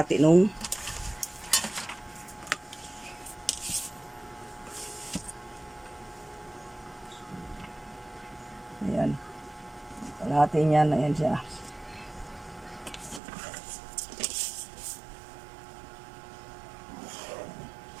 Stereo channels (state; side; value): drops out; left; at 13.2 s